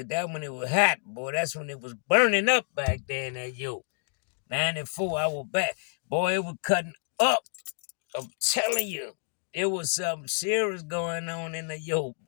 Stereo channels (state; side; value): silent; right; 59 dB below the other